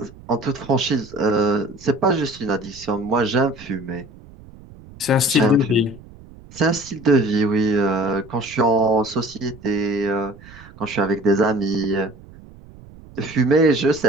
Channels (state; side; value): noise; right; rumble, 21 dB below the sound